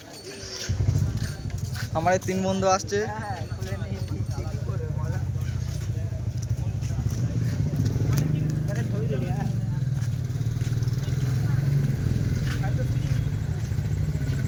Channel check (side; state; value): both; identical; correlation 1.00